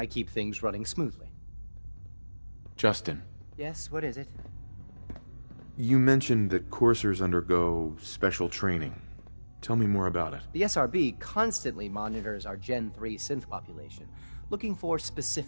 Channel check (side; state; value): both; inverted; correlation -1.00